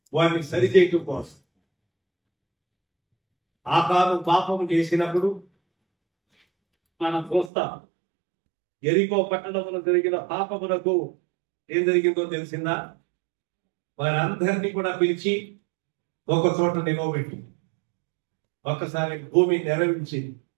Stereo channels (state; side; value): drops out; left; at 7.5 s